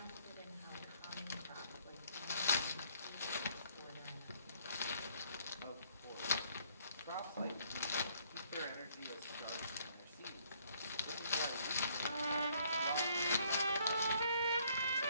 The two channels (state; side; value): inverted; both; correlation -0.65